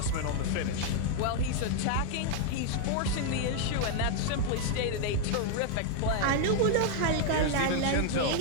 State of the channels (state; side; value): different; both; correlation 0.00